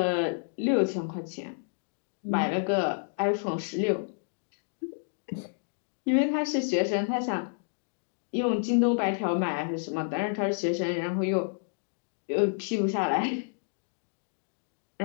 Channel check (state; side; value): silent; right; digital silence